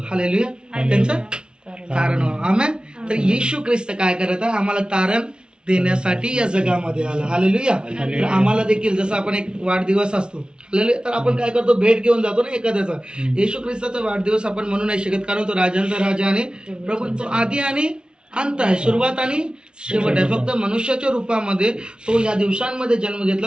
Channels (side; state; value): left; late; 0.055 ms